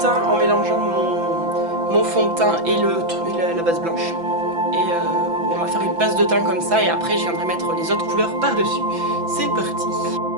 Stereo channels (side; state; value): left; late; 5.9 ms